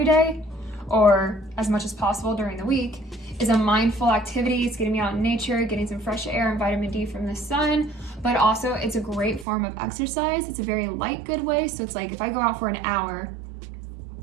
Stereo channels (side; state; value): left; drops out; at 9.5 s